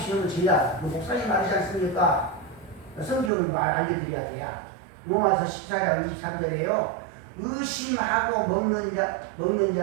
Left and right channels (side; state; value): left; drops out; at 3.3 s